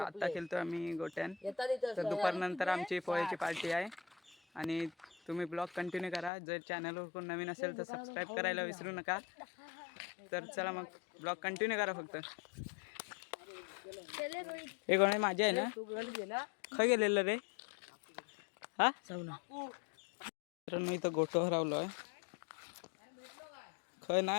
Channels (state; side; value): drops out; right; at 6.3 s